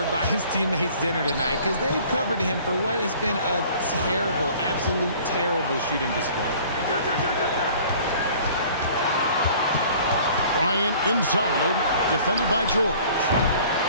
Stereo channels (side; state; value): both; inverted; correlation -0.50